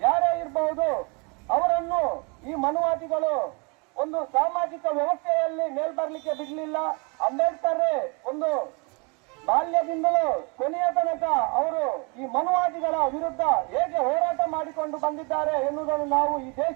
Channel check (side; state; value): left; quieter; 32.0 dB